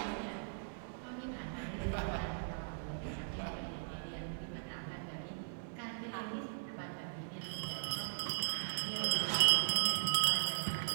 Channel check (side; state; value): left; silent; 52 dB below the other